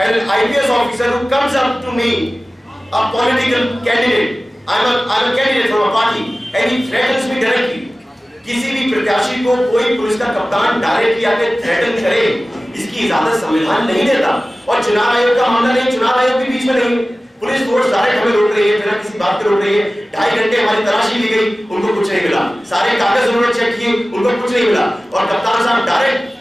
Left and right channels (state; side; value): normal; both; correlation 0.97